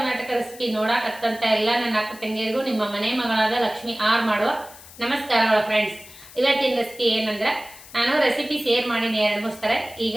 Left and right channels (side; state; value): left; noise; hiss, 19 dB below the sound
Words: recipe ನೋಡಕತ್ತಂತ ಎಲ್ಲ ನನ್ನ ಅಕ್ಕ ತಂಗಿಯರಿಗೂ ನಿಮ್ಮ ಮನೆ ಮಗಳಾದ ಲಕ್ಷ್ಮಿ ಆರ್ ಮಾಡುವ ನಮಸ್ಕಾರಗಳು ಫ್ರೆಂಡ್ಸ್. ಇವತ್ತಿನ ರೆಸಿಪಿ ಏನಂದ್ರೆ, ನಾನು ರೆಸಿಪಿ ಶೇರ್ ಮಾಡೀನಿ 2-3 ಸಲ. ಈಗ